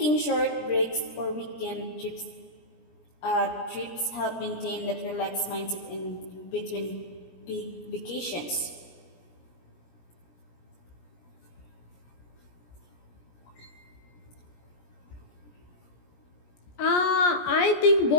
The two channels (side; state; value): right; late; 17 ms